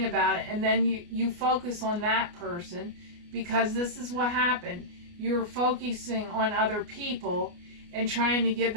about it, and then you focus on that person, because this is what happened. You're focusing on other people and trying to give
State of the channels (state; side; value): late; left; 29 ms